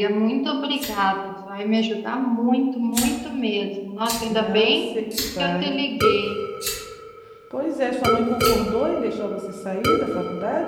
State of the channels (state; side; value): identical; both; correlation 1.00